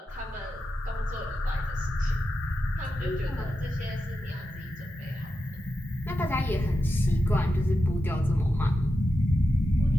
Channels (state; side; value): normal; both; correlation 0.90